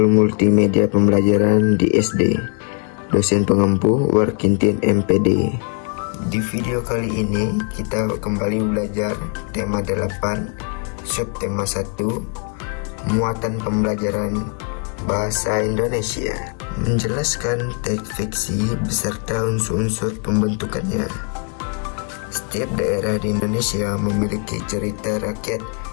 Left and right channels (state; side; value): quieter; right; 39.0 dB